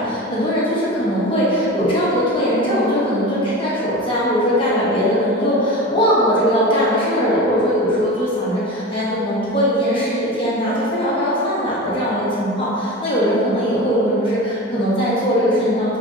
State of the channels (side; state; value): both; normal; correlation 0.29